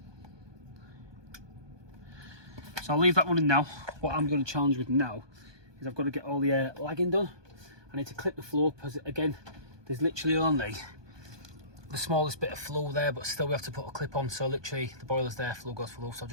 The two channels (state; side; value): late; left; 1.2 ms